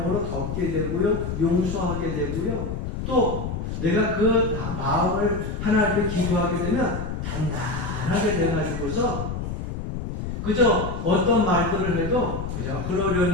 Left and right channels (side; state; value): left; noise; rumble, 5 dB below the sound